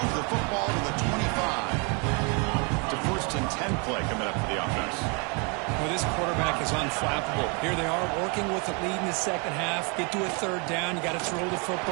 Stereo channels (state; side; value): quieter; left; 33.4 dB